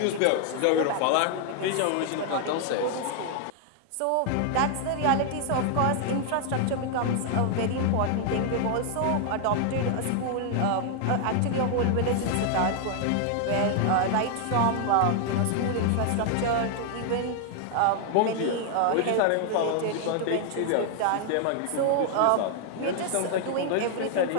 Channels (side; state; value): both; different; correlation 0.00